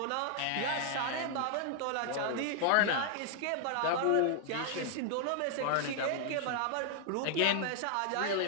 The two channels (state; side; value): different; both; correlation 0.00